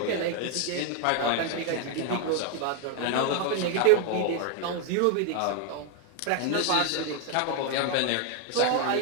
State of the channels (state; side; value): different; both; correlation 0.01